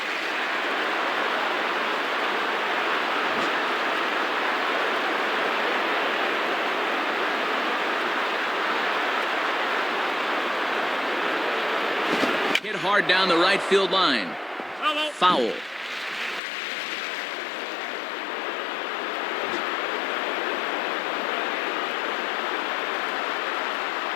Hit hard down the right field line. Foul.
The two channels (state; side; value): drops out; right; at 16.4 s